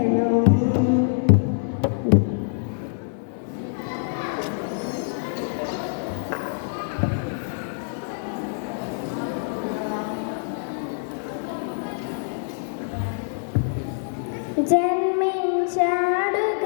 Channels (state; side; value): silent; right; digital silence